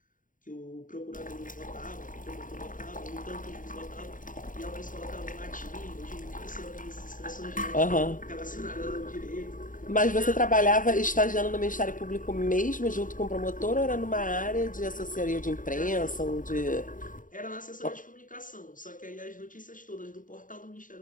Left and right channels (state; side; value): late; right; 0.39 ms